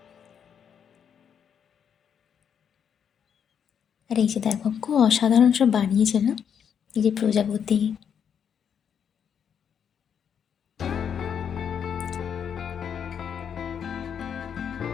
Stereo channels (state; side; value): quieter; right; 7.9 dB